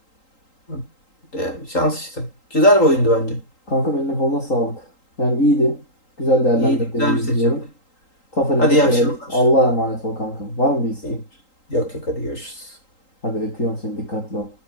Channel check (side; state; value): right; late; 3.8 ms